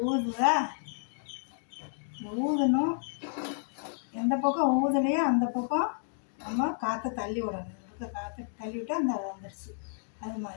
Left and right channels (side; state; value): right; silent; digital silence